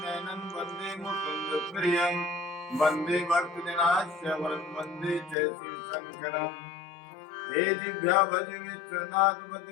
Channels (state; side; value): drops out; right; at 5.4 s